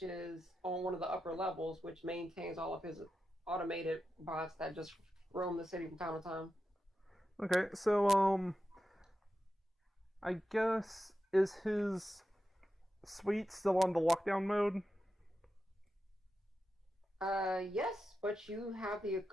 is on one of the upper levels, which maintains all of his automated bots that just roam the city from time to time. Okay, so I guess is his suite still on the lockdown mode? Yes, but you have the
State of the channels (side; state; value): both; normal; correlation 0.90